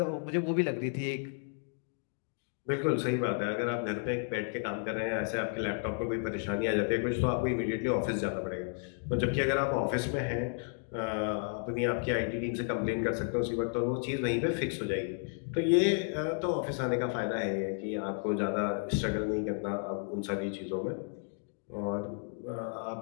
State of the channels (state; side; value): silent; right; 56 dB below the other